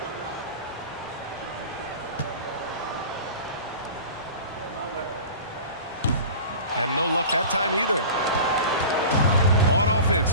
And no luck that time either. On offense,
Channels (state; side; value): inverted; both; correlation -0.37